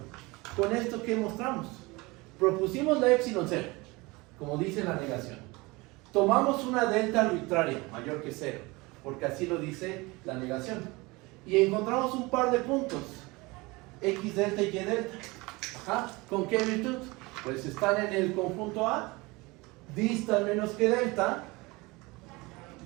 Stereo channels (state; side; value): quieter; left; 23.8 dB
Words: Con esto, ¿qué mostramos? Propusimos la epsilon 0, como dice la negación. Tomamos una delta arbitraria, mayor que 0, porque así lo dice la negación. Y encontramos un par de puntos, x delta y y delta. Ajá. ¿Con qué virtud? Pues están en el conjunto A, distan menos que delta,